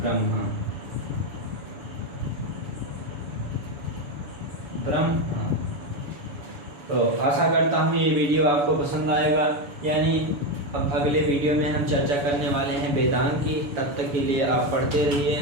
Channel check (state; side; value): late; left; 7.0 ms